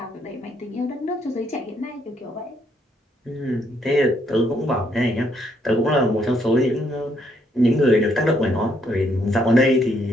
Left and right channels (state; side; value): normal; both; correlation 0.72